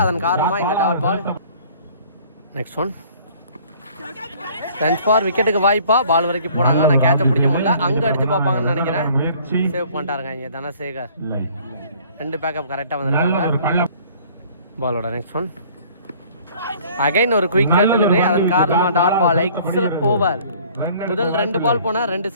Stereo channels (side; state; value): both; inverted; correlation -0.54